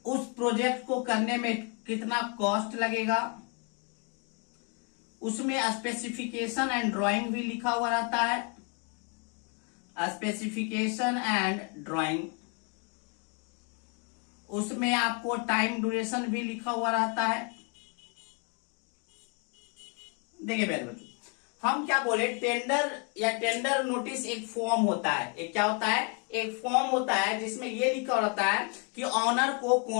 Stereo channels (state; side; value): quieter; right; 36.3 dB